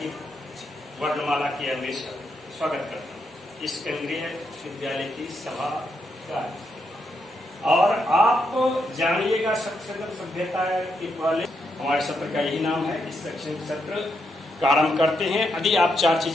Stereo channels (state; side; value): normal; both; correlation 0.80